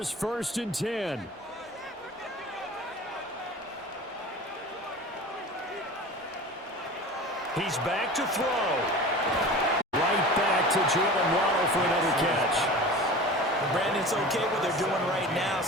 1st and 10. He's back to throw. Right back to Jalen Waddle for another catch. Brandon's okay what they're doing right now.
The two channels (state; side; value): normal; both; correlation 0.36